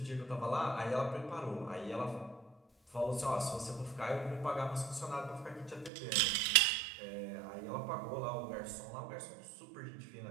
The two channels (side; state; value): left; drops out; at 5.9 s